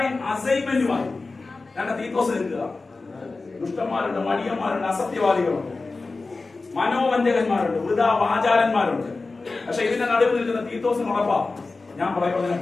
അസൈൻമെന്റുമായി ഞങ്ങളുടെ തീത്തോസ് നിൽക്കുക. ദുഷ്ടന്മാരുണ്ട്, മടിയന്മാരുണ്ട്, അസത്യവാദികളുണ്ട്, മനോവഞ്ചകന്മാരുണ്ട്, വൃഥാവാചാരന്മാരുണ്ട്. പക്ഷെ ഇതിന്റെ നടുവിൽ നിൽക്കുന്ന തീത്തോസിന് ഉറപ്പാ, ഞാൻ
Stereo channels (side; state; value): right; quieter; 3.7 dB